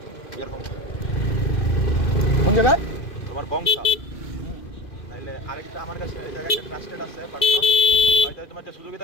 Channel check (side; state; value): right; late; 2.5 ms